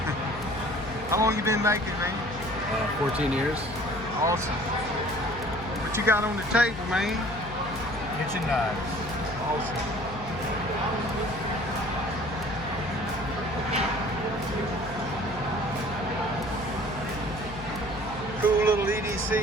How long you been making, man? 14 years. Awesome. What you got on the table, man? Kitchen knives. Awesome. Cool little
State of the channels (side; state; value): left; noise; hum, 12 dB below the sound